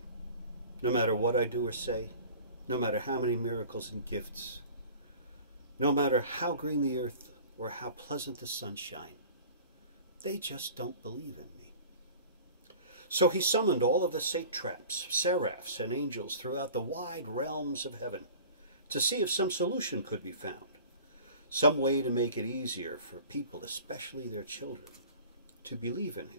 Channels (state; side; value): inverted; both; correlation -0.43